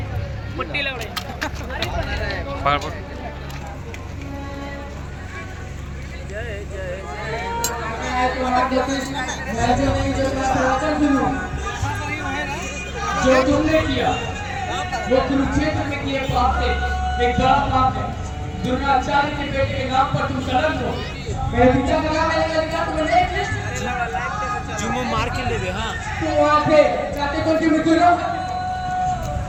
पट्टी लग रही जो तुमने किया वो कुरुक्षेत्र में किए पाप से एक बड़ा पाप है। द्रोणाचार्य के बेटे के नाम पर तुम कलंक हो। मैं पीछा लगा मैंने लड़का तुम्हें देख जुमो मार के ले दे। हाँ तो वहां पे चाहते तो क्यों मृत्यु लो।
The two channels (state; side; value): identical; both; correlation 1.00